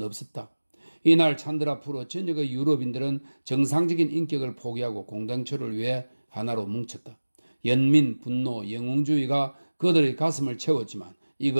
없었다. 이날 찬드라 프로 전역의 유럽인들은 정상적인 인격을 포기하고 공동체를 위해 하나로 뭉쳤다. 연민, 분노, 영웅주의가 그들의 가슴을 채웠지만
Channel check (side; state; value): both; inverted; correlation -1.00